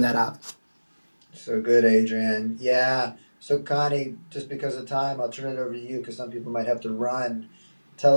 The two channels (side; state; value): both; inverted; correlation -1.00